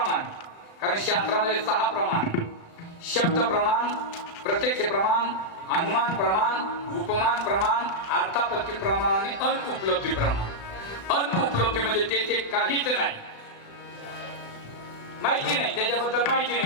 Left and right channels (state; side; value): late; right; 36 ms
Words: कारण शास्त्रामध्ये 6 प्रमाण: शब्द प्रमाण, प्रत्यक्ष प्रमाण, अनुमान प्रमाण, उपमान प्रमाण, अर्थापत्ती प्रमाण आणि अनुपलब्धी प्रमाण. अनुपलब्धी म्हणजे ते काहीच नाही, माहिती नाही, त्याच्याबद्दल माहिती